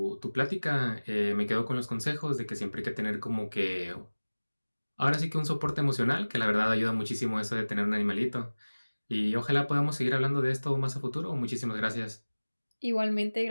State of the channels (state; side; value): inverted; both; correlation -1.00